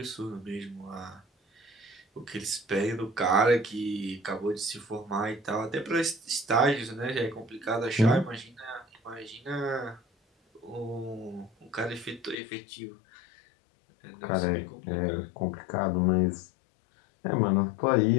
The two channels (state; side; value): drops out; right; at 12.4 s